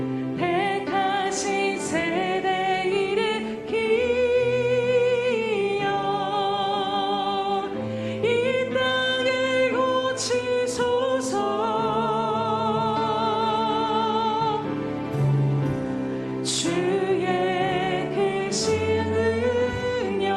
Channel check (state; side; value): identical; both; correlation 1.00